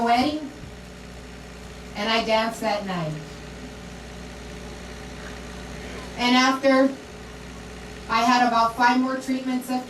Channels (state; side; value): identical; both; correlation 1.00